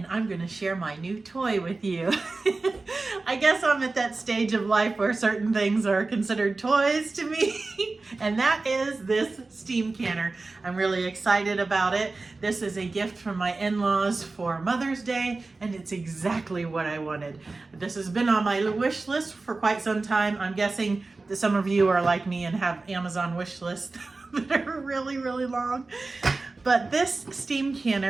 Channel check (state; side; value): quieter; left; 3.6 dB